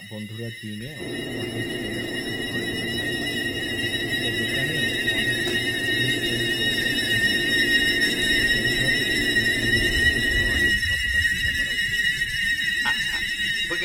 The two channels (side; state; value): both; identical; correlation 1.00